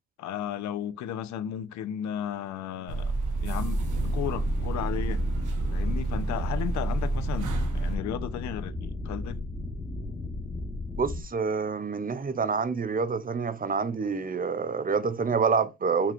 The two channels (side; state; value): both; normal; correlation 0.44